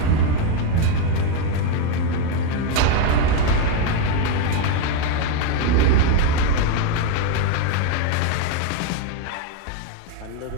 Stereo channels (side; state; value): both; different; correlation 0.02